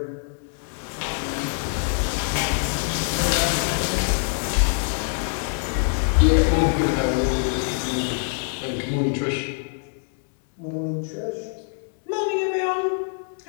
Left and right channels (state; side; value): silent; right; 62 dB below the other